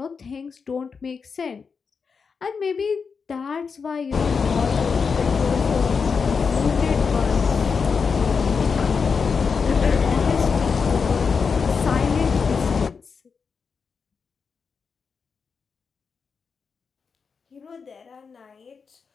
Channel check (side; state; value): right; quieter; 5.5 dB